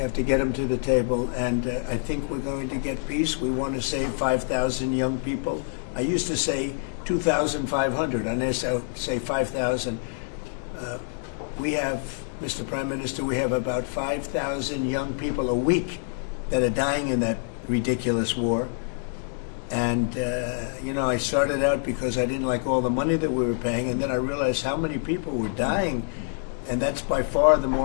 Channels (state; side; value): silent; right; 60 dB below the other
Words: to get them to the table, and I think we're going to get peace. We want to save 5,000 young people. I used to say 2,500. I now say 5,000. We have, Mr. Prime Minister, we have about 5,000 young people a week that are dying in that ridiculous war. And, you know, I started out because I didn't like all the money that we were paying, and then I realized how many people were dying. And that's by far the